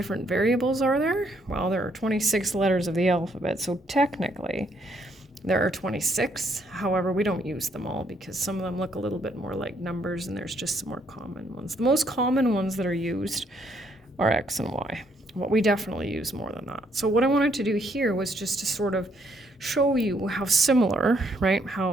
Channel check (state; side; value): normal; both; correlation 0.70